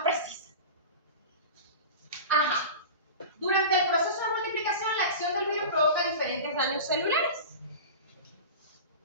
precisa. Ajá. Durante el proceso de multiplicación, la acción del virus provoca diferentes daños celulares.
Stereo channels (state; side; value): inverted; both; correlation -0.31